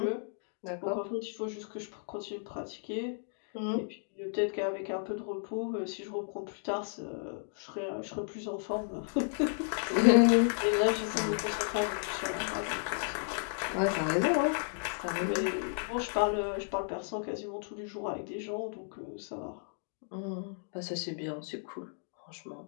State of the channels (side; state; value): right; silent; digital silence